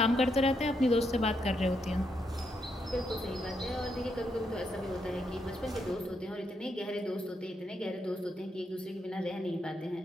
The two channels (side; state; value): both; normal; correlation 0.79